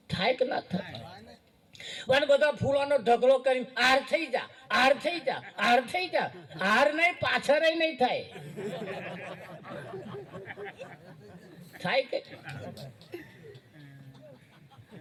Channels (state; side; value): identical; both; correlation 1.00